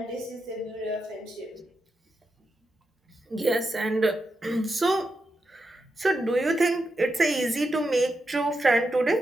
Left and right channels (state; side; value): normal; both; correlation 0.86